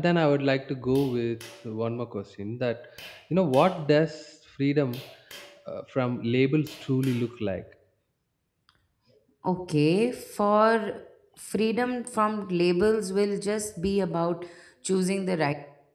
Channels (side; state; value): both; identical; correlation 1.00